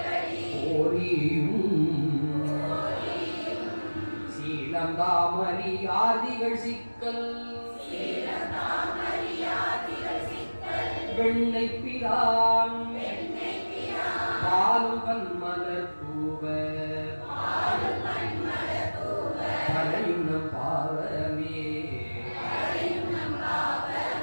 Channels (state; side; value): inverted; both; correlation -1.00